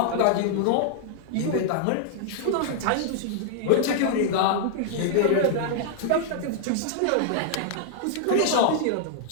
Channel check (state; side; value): different; both; correlation -0.01